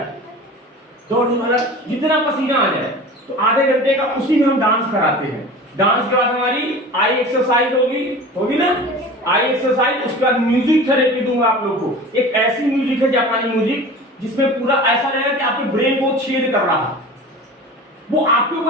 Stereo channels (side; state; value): both; normal; correlation 0.37